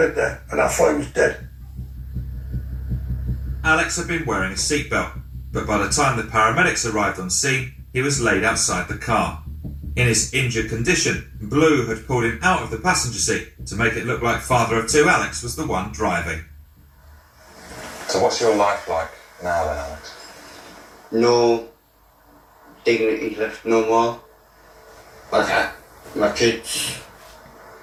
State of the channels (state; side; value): identical; both; correlation 1.00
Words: there, and I thought he was dead. Alex had been wearing a seatbelt, but by the time the paramedics arrived on scene, he was laid outside the car. In his injured condition, Blue had pulled him out of the passenger seat to make it look like father of two Alex was the one driving. So what's your life like now then, Alex? No dignity left no more. Like my kids,